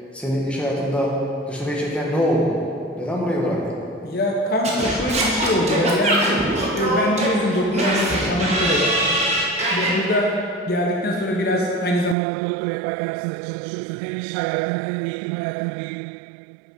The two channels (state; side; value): drops out; left; at 12.2 s